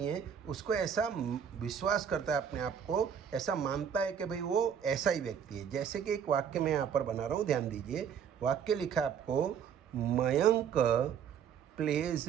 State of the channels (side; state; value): left; quieter; 7.8 dB